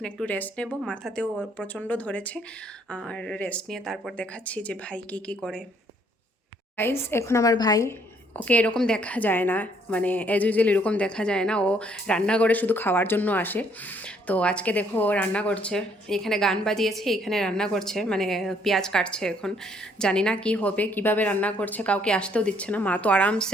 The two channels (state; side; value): normal; both; correlation 0.66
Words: একটু রেস্ট নেব, মাথাতেও প্রচণ্ড ধরেছে, আর রেস্ট নিয়ে তারপর দেখাচ্ছি যে ভাই কি করে। গাইস, এখন আমার ভাই, ওকে এরকম দেখা যায় না, মানে অ্যাজ ইউজুয়াল এরকম দেখা যায় না, ও রান্নাঘরে শুধু খাওয়ার জন্য আসে। তো আজকে দেখো ও রান্না করছে, এখানে গান বাজিয়েছে, এখানে রান্না করছে, মানে পেঁয়াজ কাটছে। এখন জানি না কি হবে, কিভাবে রান্না করছে, কাউকে আসতেও দিচ্ছে না। মা তো